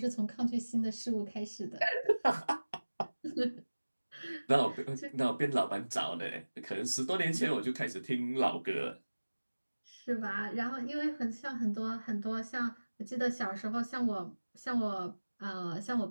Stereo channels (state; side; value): inverted; both; correlation -1.00